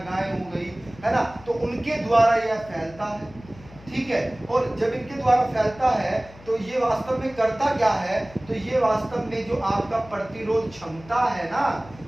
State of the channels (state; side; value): noise; left; hum, 21 dB below the sound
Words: हो गई, है ना, तो उनके द्वारा यह फैलता है, ठीक है। और जब इनके द्वारा फैलता है तो ये वास्तव में करता क्या है? तो ये वास्तव में जो आपका प्रतिरोध क्षमता है ना,